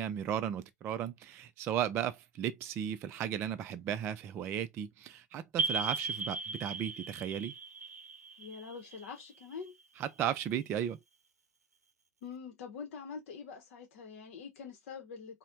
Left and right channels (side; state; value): left; quieter; 6.9 dB